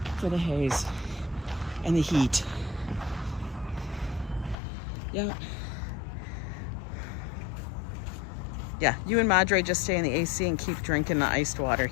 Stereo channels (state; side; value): drops out; right; at 4.5 s